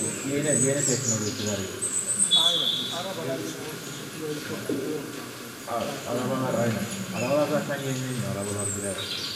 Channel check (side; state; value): both; identical; correlation 1.00